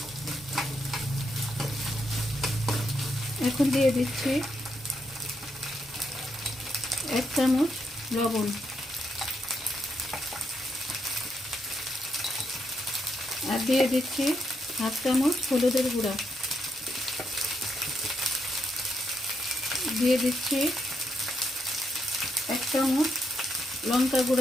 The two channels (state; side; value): normal; both; correlation 0.79